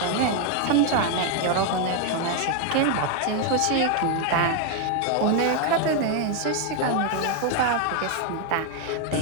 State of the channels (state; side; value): different; both; correlation 0.01